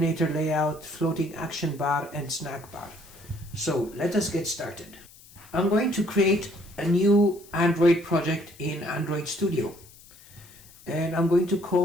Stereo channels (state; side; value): noise; left; hiss, 23 dB below the sound